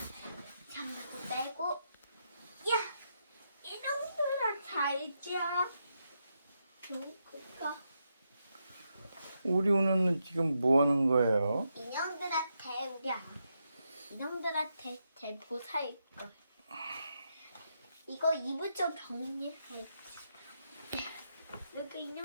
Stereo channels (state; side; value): inverted; both; correlation -0.82